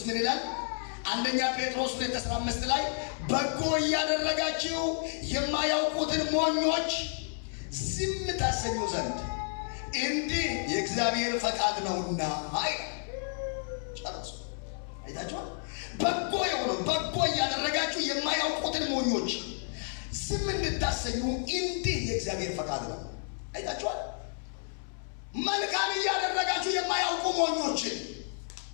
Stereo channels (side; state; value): right; silent; 57 dB below the other